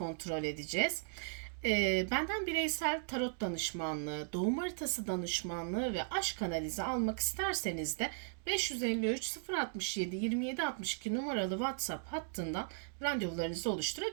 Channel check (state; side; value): silent; left; digital silence